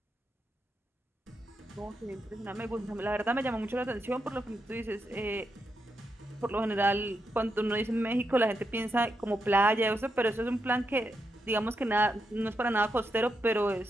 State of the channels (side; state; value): both; normal; correlation 0.84